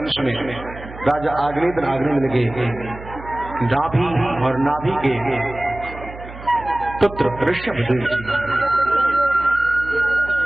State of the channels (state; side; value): noise; right; hum, 15 dB below the sound